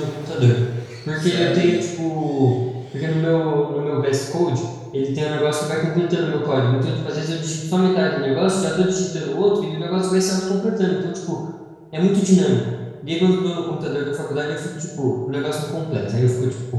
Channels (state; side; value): identical; both; correlation 1.00